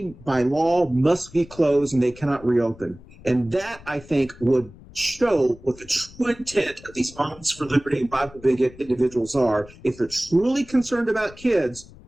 by law, must be closed and they cannot reopen. And that, I think, would show what the true intent of these Moms for Liberty and Bible bigot individuals are. If they're truly concerned about kids,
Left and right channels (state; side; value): noise; left; rumble, 21 dB below the sound